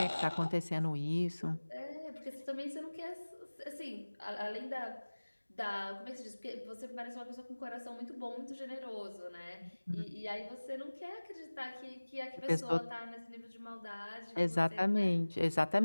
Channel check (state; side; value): inverted; both; correlation -1.00